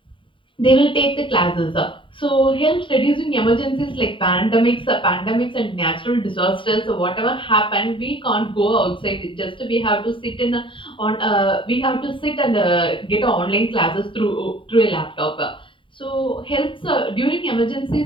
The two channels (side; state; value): right; late; 0.25 ms